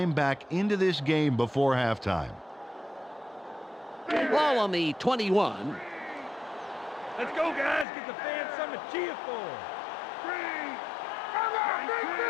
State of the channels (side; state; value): right; drops out; at 7.9 s